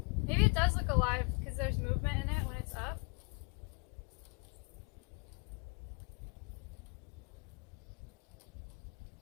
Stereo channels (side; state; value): right; quieter; 31.9 dB